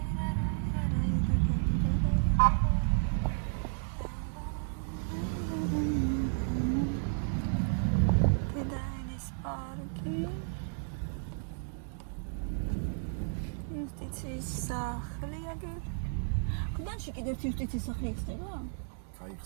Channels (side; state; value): left; silent; 56 dB below the other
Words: იუსტიციის სახლი აგერ. კუდანში კიდევ იუსტიციის სახლი იქნება?